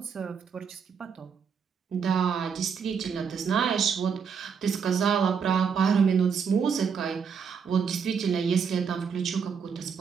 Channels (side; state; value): left; quieter; 6.4 dB